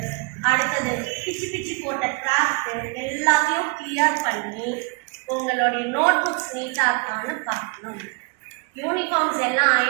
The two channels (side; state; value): left; quieter; 33.9 dB